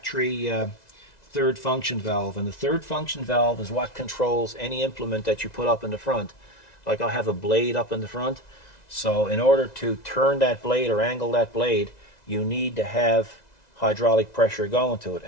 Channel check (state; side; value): late; right; 2.0 ms